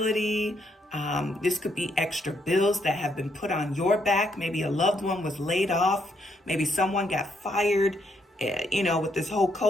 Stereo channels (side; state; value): both; normal; correlation 0.75